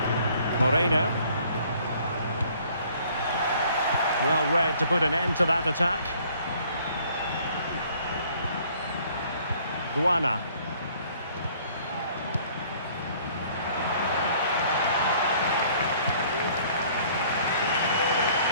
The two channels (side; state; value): both; inverted; correlation -0.58